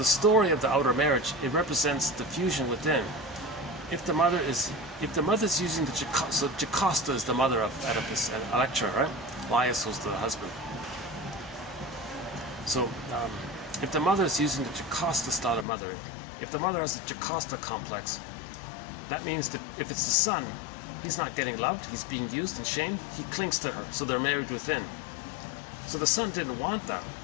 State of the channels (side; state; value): right; drops out; at 15.7 s